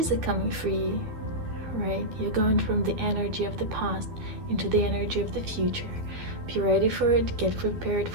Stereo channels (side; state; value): left; late; 12 ms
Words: are coming for you, right? You're going from the energy of the past into the energy of the future. Be ready for it, get prepared